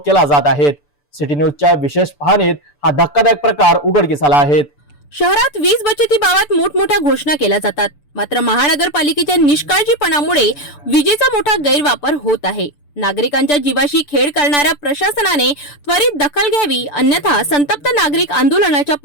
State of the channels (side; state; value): right; late; 6.9 ms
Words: केला जात आहे। सिटी न्यूजच्या विशेष पाहणीत हा धक्कादायक प्रकार उघडकीस आला आहे। शहरात वीज बचतीबाबत मोठमोठ्या घोषणा केल्या जातात, मात्र महानगरपालिकेच्या निष्काळजीपणामुळे विजेचा मोठा गैरवापर होत आहे। नागरिकांच्या जीवाशी खेळ करणाऱ्या प्रशासनाने त्वरित दखल घ्यावी, अन्यथा संतप्त नागरिक आंदोलनाच्या